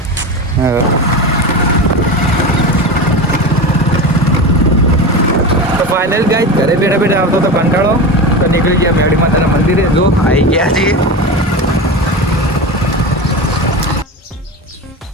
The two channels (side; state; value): both; normal; correlation 0.24